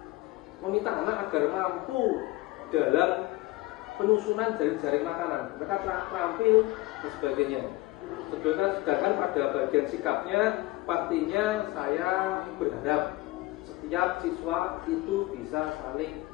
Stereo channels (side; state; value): right; quieter; 19.5 dB